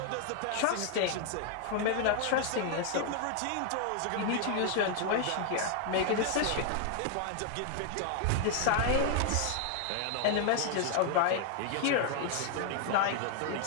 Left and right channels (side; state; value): both; different; correlation 0.00